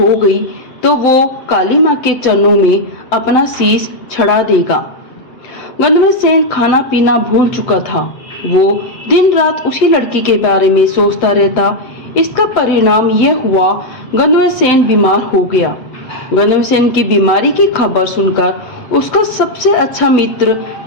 गई तो वो काली माँ के चरणों में अपना शीश चढ़ा देगा। गंधर्वसेन खाना पीना भूल चुका था। वो दिन रात उसी लड़की के बारे में सोचता रहता। इसका परिणाम यह हुआ, गंधर्वसेन बीमार हो गया। गंधर्वसेन की बीमारी की खबर सुनकर उसका सबसे अच्छा मित्र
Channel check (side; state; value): right; late; 7.9 ms